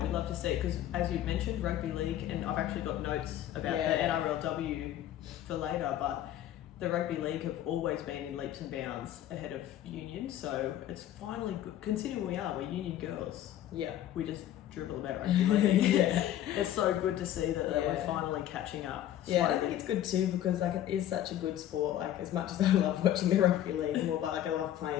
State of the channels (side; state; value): right; quieter; 12.1 dB